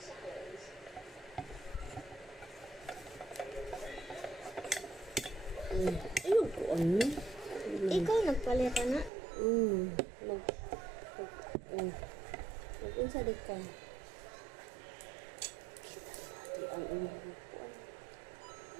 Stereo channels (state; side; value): drops out; left; at 9.1 s